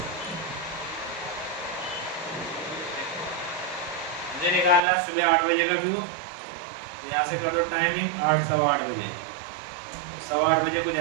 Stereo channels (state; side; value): drops out; left; at 4.8 s